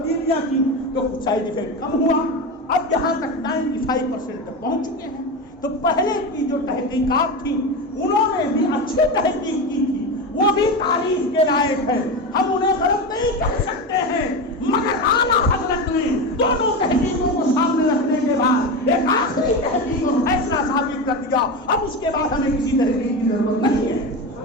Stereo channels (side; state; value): both; normal; correlation 0.20